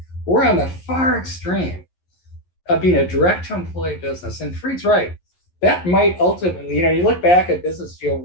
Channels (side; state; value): right; late; 11 ms